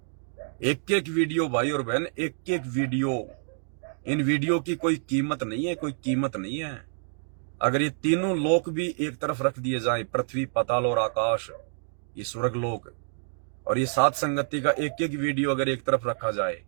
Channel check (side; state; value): left; silent; digital silence